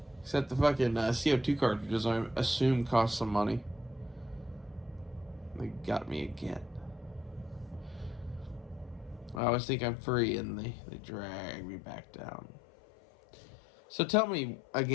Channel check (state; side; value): drops out; right; at 9.4 s